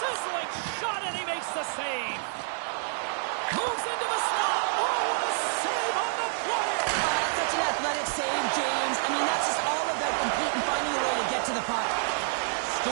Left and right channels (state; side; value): silent; left; digital silence